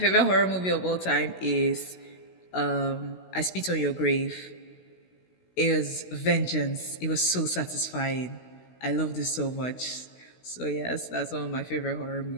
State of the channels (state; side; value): late; right; 16 ms